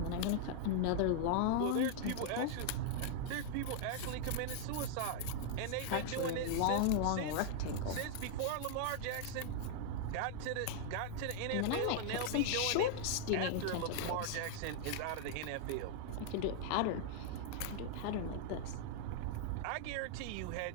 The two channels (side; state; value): both; different; correlation 0.00